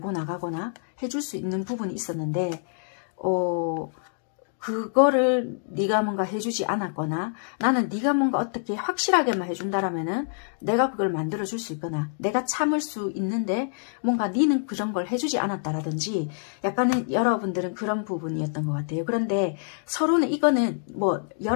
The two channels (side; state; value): right; silent; digital silence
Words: 나가거나 해줄 수 있는 부분이 있었는데 그거를 네가 뭔가 해주지 않았거나 나는 네가 뭔가 어떻게 확실하게만 해준다라면은 내가 그걸 만들어줄 수 있거나 내가 참을 수 있는데 뭔가 네는 그런 걸 해주지 않았다라든지 약간은 여러분들은 그런 부분이었던 것 같아요. 그런데 서로는 이거는 뭐